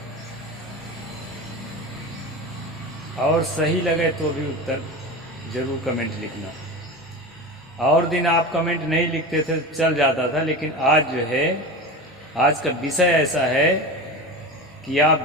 और सही लगे तो भी उत्तर ज़रूर कमेंट लिखना। और दिन आप कमेंट नहीं लिखते थे चल जाता था, लेकिन आज जो है आज का विषय ऐसा है कि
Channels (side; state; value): both; normal; correlation 0.27